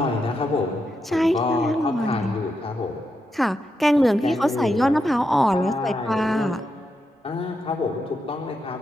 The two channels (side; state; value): both; normal; correlation 0.84